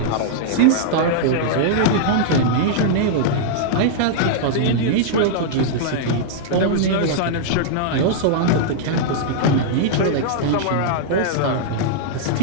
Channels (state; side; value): different; both; correlation -0.01